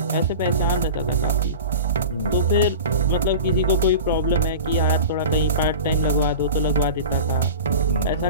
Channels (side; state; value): both; inverted; correlation -0.33